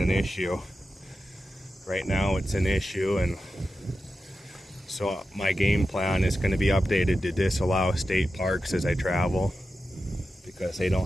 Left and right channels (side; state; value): both; normal; correlation 0.91